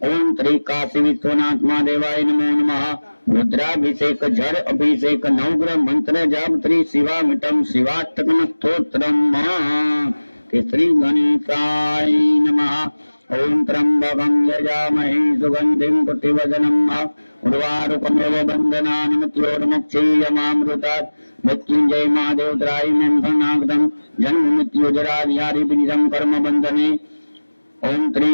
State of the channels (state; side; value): inverted; both; correlation -1.00